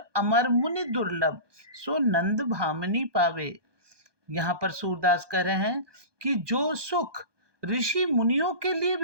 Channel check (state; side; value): late; left; 1.2 ms